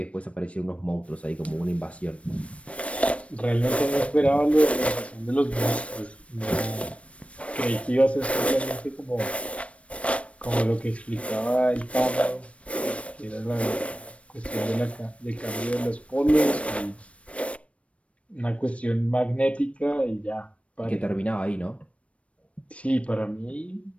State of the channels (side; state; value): right; late; 0.063 ms